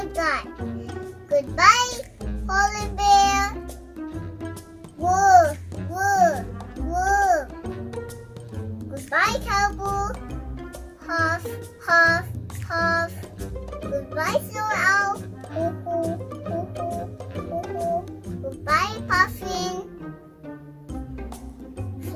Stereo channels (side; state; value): both; identical; correlation 1.00